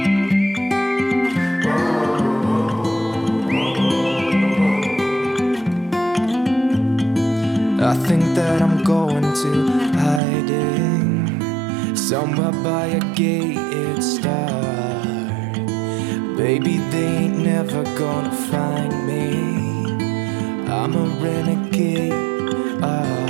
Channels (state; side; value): drops out; left; at 10.2 s